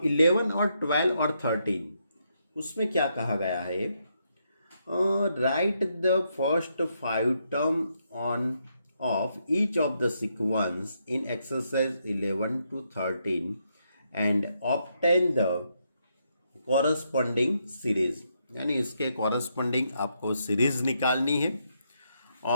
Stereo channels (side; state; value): both; inverted; correlation -0.79